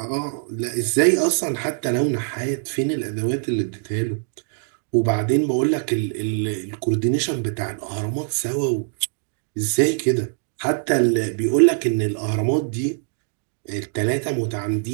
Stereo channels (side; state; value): left; silent; 64 dB below the other